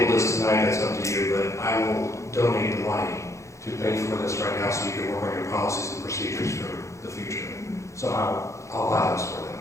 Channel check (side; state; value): right; late; 0.15 ms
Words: this tonight, that's up to you, but I will donate the money to pay for this right now so you can work on your policies and procedures for the future. So I'll allow this for them.